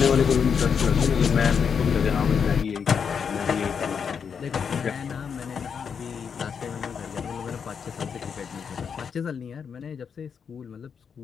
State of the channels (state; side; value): quieter; right; 6.7 dB